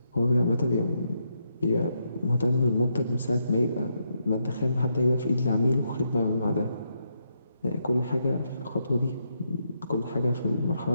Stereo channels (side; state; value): both; inverted; correlation -0.79